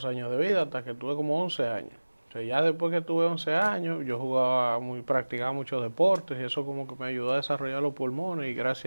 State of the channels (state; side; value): inverted; both; correlation -1.00